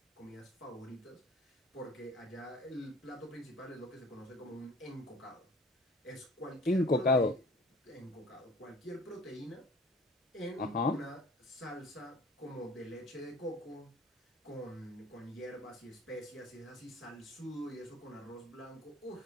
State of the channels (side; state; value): both; normal; correlation 0.48